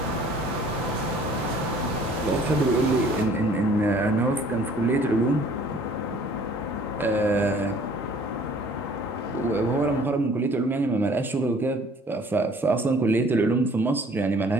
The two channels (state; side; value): normal; both; correlation 0.54